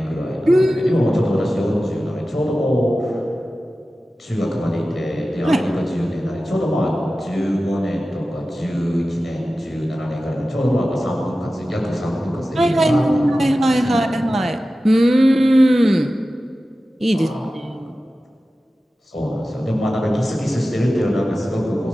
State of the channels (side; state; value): both; normal; correlation 0.95